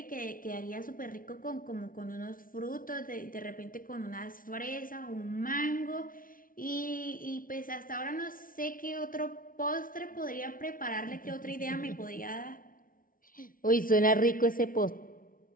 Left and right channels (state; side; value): late; right; 0.40 ms